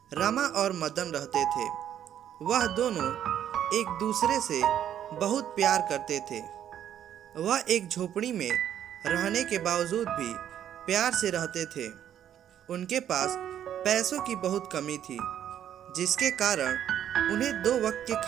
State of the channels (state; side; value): quieter; left; 10.3 dB